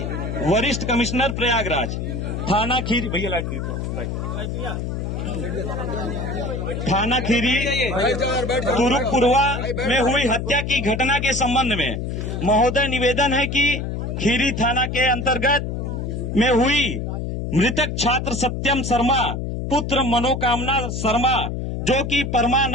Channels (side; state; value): left; noise; hum, 3 dB below the sound